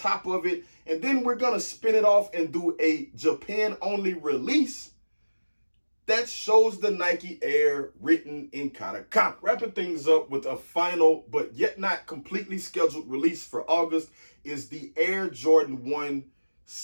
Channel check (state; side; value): inverted; both; correlation -1.00